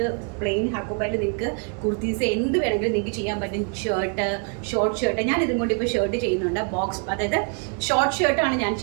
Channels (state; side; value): quieter; left; 39.5 dB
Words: പ്ലെയിൻ ഹക്കോബയിൽ നിങ്ങൾക്ക് കുർത്തീസ് എന്ത് വേണമെങ്കിലും നിങ്ങൾക്ക് ചെയ്യാൻ പറ്റും. Shirt, short shirt. ഞാൻ ഇതും കൊണ്ട് ഇപ്പോൾ ഷർട്ട് ചെയ്യുന്നുണ്ട്. ബോക്സ്, അതായത് ഷോർട്ട് ഷർട്ടാണ് ഞാൻ